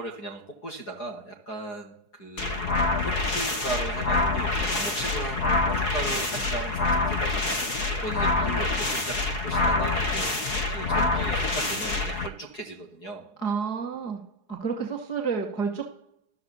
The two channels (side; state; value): right; late; 4.8 ms